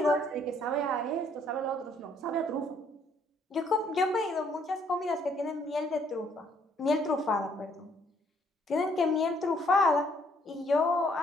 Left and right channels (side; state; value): both; normal; correlation 0.66